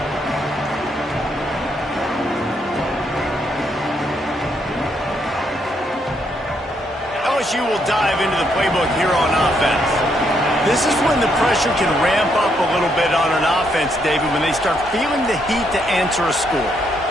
LSU will dive into the playbook here on offense. This is when the pressure can ramp up a little bit on an offense, David, when they start feeling the heat to answer a score.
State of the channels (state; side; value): normal; both; correlation 0.75